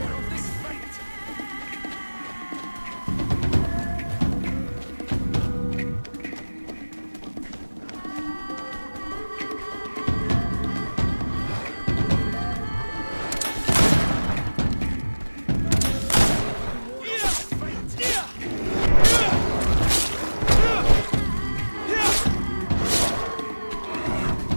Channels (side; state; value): both; inverted; correlation -1.00